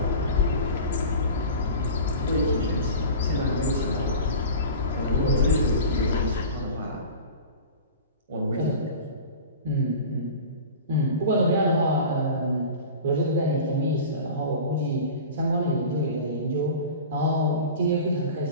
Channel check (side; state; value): both; inverted; correlation -0.35